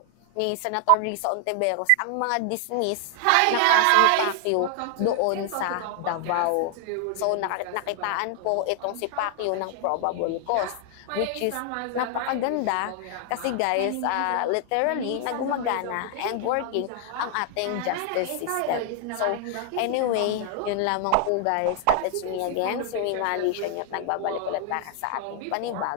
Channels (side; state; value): both; different; correlation 0.00